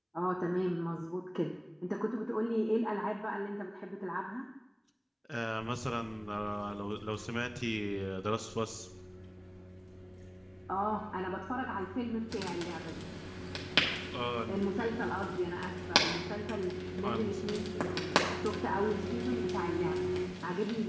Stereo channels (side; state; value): both; identical; correlation 1.00